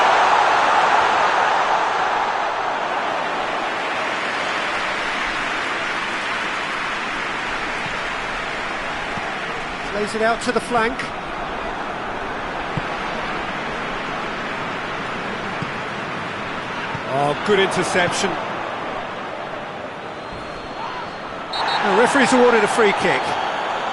Plays it out to the flank. Oh, good interception. The referee's awarded a free kick.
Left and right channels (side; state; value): both; identical; correlation 1.00